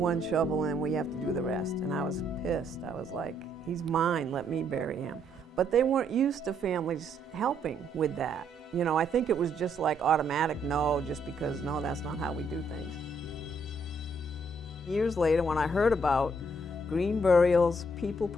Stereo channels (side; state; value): both; normal; correlation 0.71